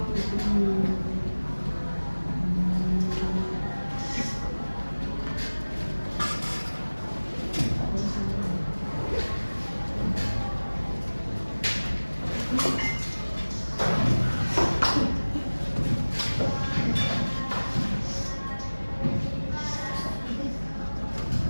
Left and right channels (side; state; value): both; inverted; correlation -1.00